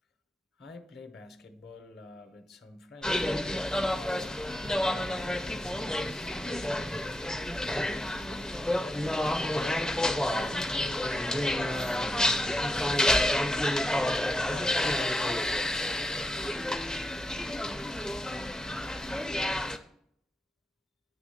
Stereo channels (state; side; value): normal; both; correlation 0.85